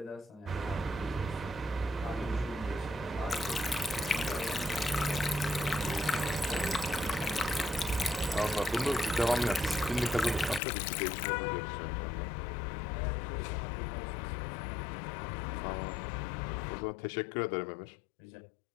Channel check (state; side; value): drops out; right; at 10.6 s